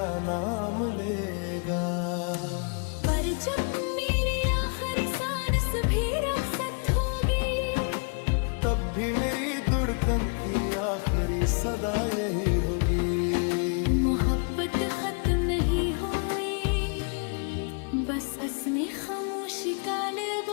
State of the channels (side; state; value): right; quieter; 39.2 dB